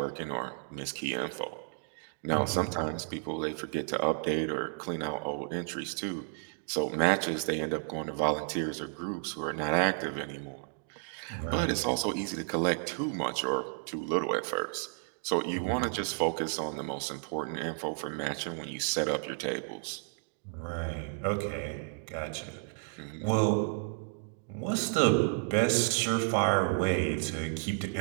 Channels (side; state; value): left; silent; 56 dB below the other